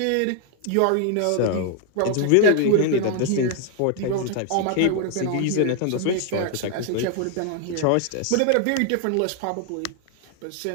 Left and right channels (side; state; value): both; different; correlation 0.00